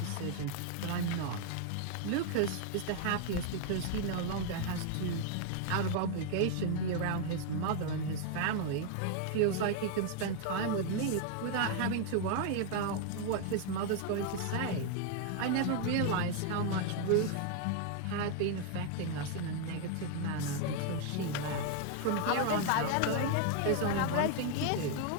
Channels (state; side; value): different; both; correlation 0.01